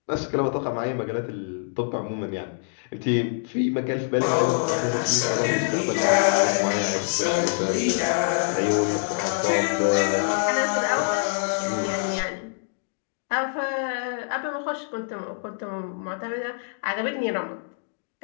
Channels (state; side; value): silent; right; digital silence